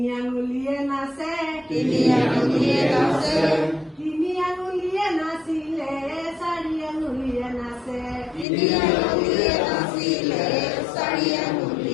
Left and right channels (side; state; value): right; drops out; at 8.5 s